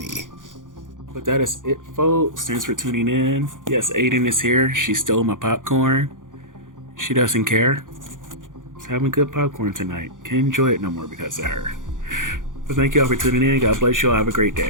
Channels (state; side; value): late; left; 0.88 ms